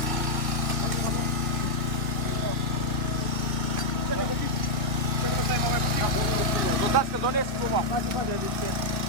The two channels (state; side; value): late; left; 2.1 ms